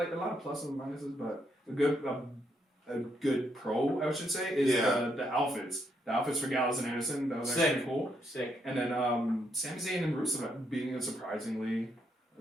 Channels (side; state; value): both; normal; correlation 0.76